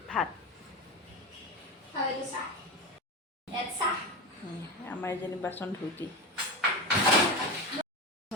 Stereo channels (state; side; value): normal; both; correlation 0.20